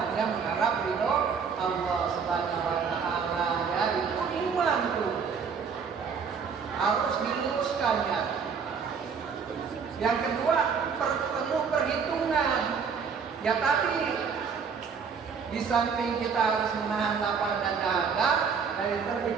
mengharap ridho Allah Subhanahu wa taala. Ya, itu iman tuh. Harus diluruskannya. Yang kedua, penuh perhitungan. Ya tadi, di samping kita harus menahan lapar dan dahaga dari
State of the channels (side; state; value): left; quieter; 6.1 dB